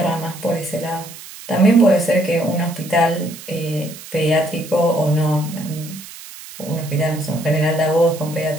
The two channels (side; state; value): right; noise; hiss, 15 dB below the sound